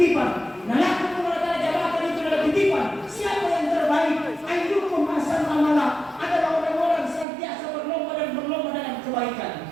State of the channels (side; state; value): left; drops out; at 7.2 s